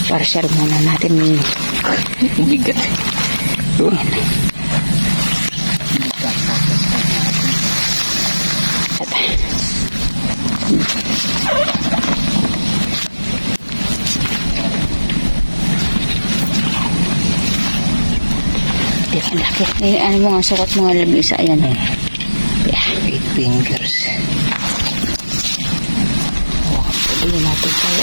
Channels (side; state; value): both; inverted; correlation -1.00